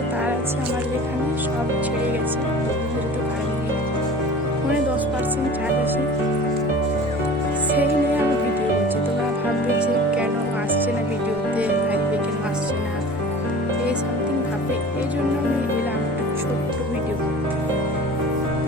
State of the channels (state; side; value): normal; both; correlation 0.40